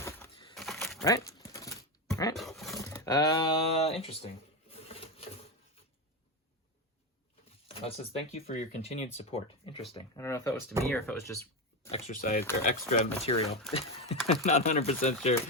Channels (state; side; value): normal; both; correlation 0.14